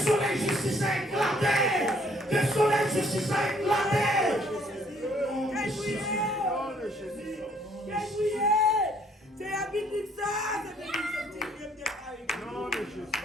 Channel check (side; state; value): both; normal; correlation 0.63